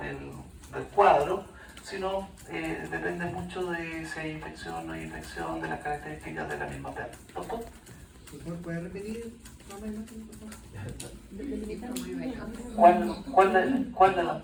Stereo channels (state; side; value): identical; both; correlation 1.00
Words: cuadro, sino depende mucho de si hay infección o no hay infección, de las características de la misma perra. ¿Doctor? ¿Puede repetir más o menos? ¿Cuál de las